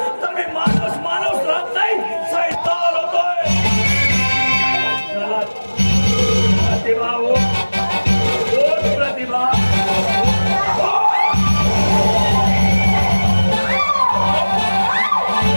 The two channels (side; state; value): both; inverted; correlation -1.00